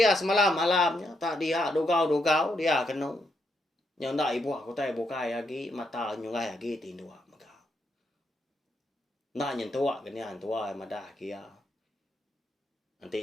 semalam malamnya tak dia dogau dia kena. Yang nak ibu aku tai bukai lagi mata nyungai lagi tindu maka. Nak nyentua kenian tua madah kia.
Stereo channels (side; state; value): both; normal; correlation 0.79